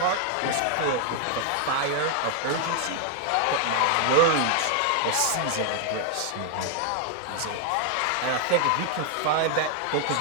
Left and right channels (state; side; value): different; both; correlation 0.00